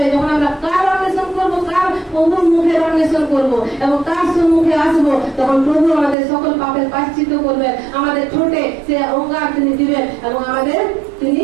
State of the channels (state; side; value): drops out; left; at 6.2 s